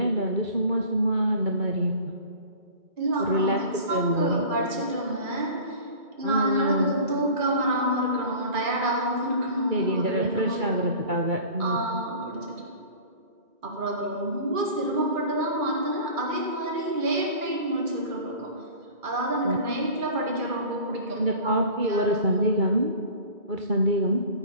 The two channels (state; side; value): late; left; 2.2 ms